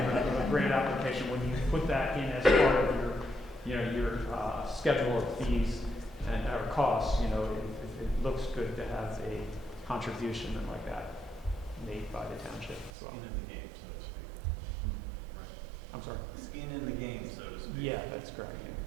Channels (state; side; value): drops out; left; at 12.9 s